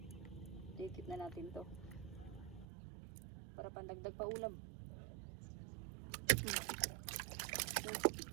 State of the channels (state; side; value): drops out; left; at 2.7 s